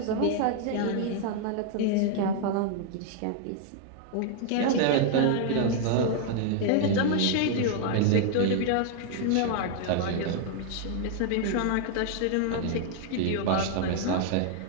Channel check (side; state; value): both; different; correlation 0.00